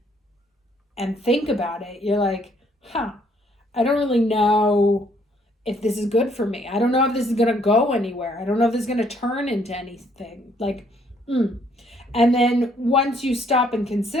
think about it, you're like, I don't really know if this is good for me. I don't know if this is going to go anywhere. I don't know if this is going to turn into anything. Like, And then once you stop and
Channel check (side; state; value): both; normal; correlation 0.66